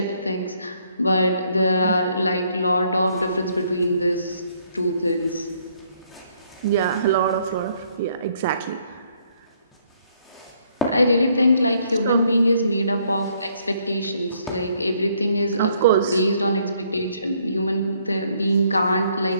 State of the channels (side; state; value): both; inverted; correlation -0.68